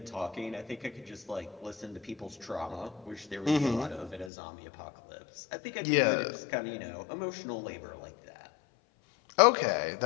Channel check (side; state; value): right; drops out; at 4.3 s